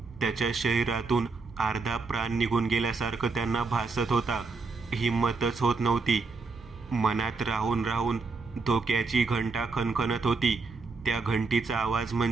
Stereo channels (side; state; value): left; quieter; 4.2 dB